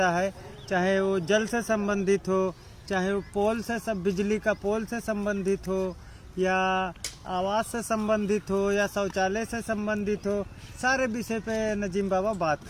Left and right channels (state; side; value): identical; both; correlation 1.00